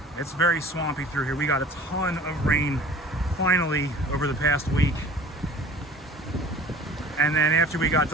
It's very swampy through here. We got a ton of rain finally over the past week. And then after we got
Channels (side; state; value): both; normal; correlation 0.45